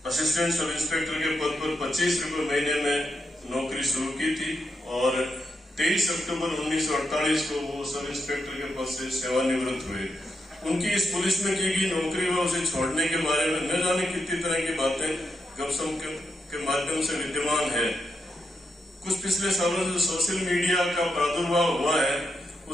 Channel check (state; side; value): normal; both; correlation 0.84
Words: असिस्टेंट सब इंस्पेक्टर के पद पर 25 रुपए महीने में नौकरी शुरू की थी और 23 अक्टूबर 1948 को वो सब इंस्पेक्टर के पद से सेवानिवृत्त हुए। उनकी इस पुलिस में की गई नौकरी व उसे छोड़ने के बारे में न जाने कितनी तरह की बातें गपशप के माध्यम से विद्यमान है। कुछ पिछले सालों से सोशल मीडिया का प्रादुर्भाव हुआ है,